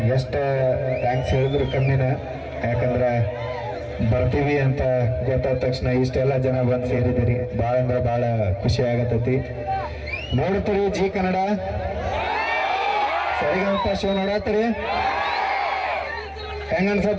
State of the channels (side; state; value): both; identical; correlation 1.00